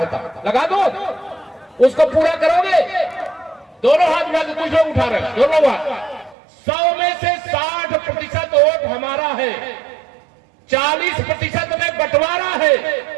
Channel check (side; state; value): left; drops out; at 6.4 s